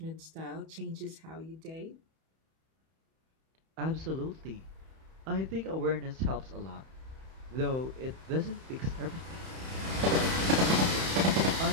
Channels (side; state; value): left; late; 31 ms